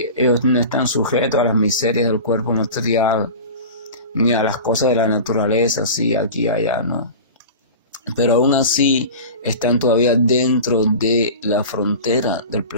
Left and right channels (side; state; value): both; inverted; correlation -0.33